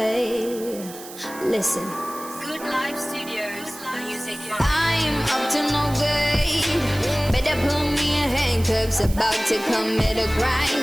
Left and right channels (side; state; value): right; noise; hiss, 15 dB below the sound